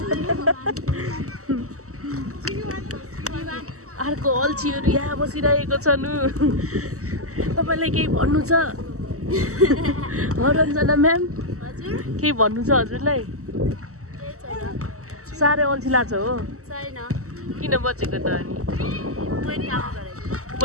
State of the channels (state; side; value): late; left; 0.65 ms